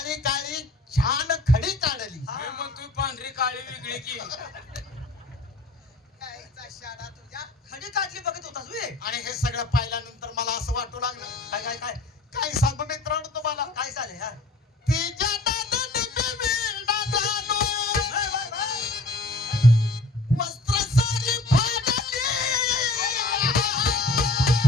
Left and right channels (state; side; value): quieter; right; 3.1 dB